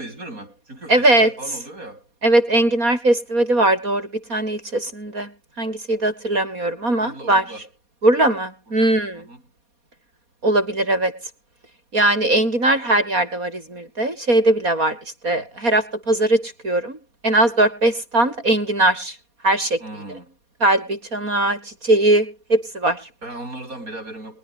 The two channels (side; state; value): left; late; 4.2 ms